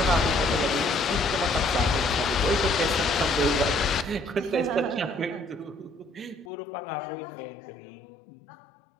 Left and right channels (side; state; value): right; drops out; at 6.5 s